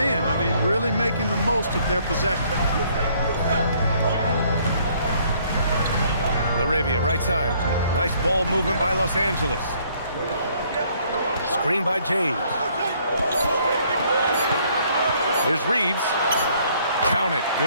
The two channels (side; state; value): both; inverted; correlation -0.64